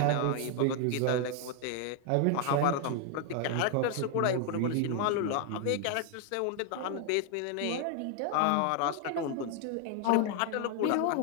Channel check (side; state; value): both; different; correlation 0.00